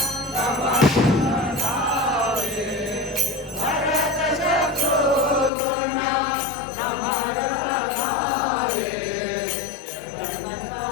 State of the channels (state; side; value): drops out; right; at 5.5 s